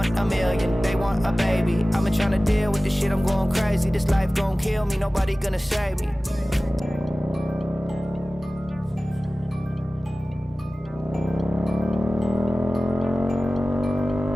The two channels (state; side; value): normal; both; correlation 0.97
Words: a million, they want a baby. I've been trying to deal with this shit, I'm going crazy. This life gon' kill me, nobody gonna save me.